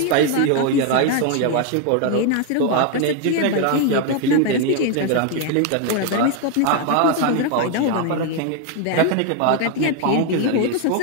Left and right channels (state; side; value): different; both; correlation 0.01